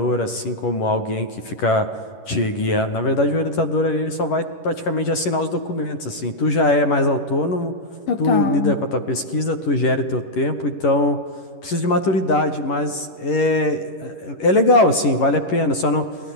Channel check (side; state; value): right; late; 11 ms